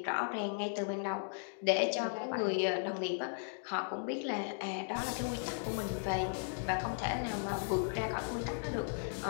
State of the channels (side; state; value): right; silent; digital silence